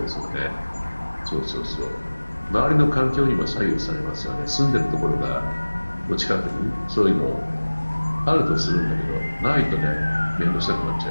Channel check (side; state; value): both; inverted; correlation -1.00